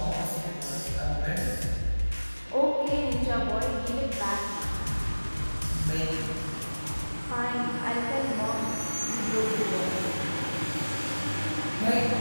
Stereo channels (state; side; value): inverted; both; correlation -1.00